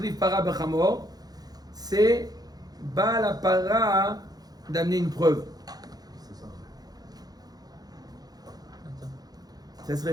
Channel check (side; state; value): left; late; 0.19 ms